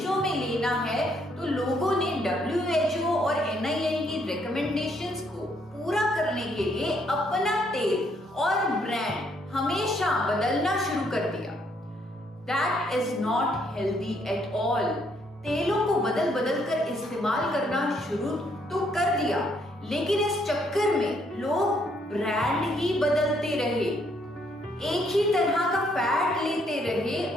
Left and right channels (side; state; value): both; normal; correlation 0.70